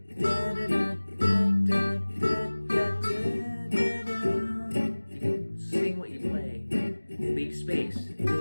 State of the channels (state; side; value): inverted; both; correlation -1.00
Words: You can sing what you play. Leave space.